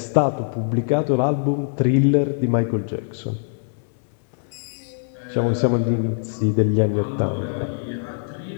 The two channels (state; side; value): silent; right; 64 dB below the other